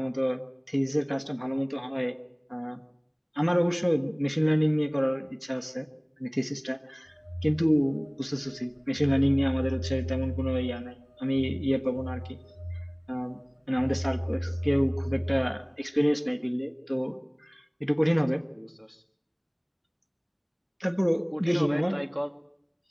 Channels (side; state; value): both; identical; correlation 1.00